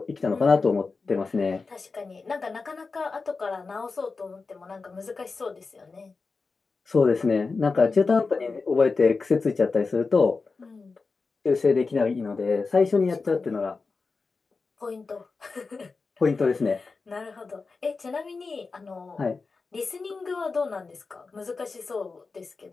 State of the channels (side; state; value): right; quieter; 4.3 dB